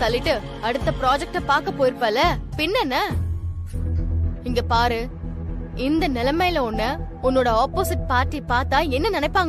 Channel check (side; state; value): both; identical; correlation 1.00